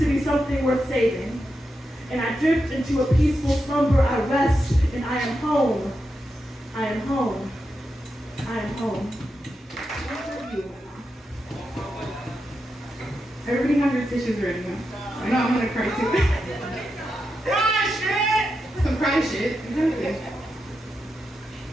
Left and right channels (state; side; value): normal; both; correlation 0.87